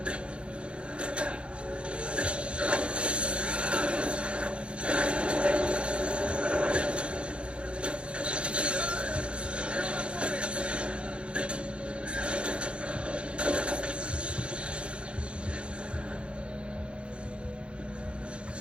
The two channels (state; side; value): late; left; 0.057 ms